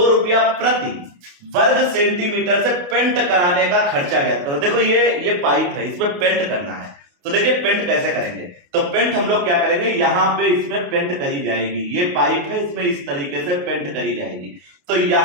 रुपया प्रति वर्ग सेंटीमीटर से पेंट कराने का खर्चा ज्ञात करो। देखो ये पाइप है, इसमें पेंट करना है। तो देखिए पेंट कैसे करेंगे, तो पेंट हम लोग क्या करेंगे, यहां पे इसमें पेंट करी जाएगी। ये पाइप है, इसमें इस तरीके से पेंट करी जाएगी। तो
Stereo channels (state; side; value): late; left; 28 ms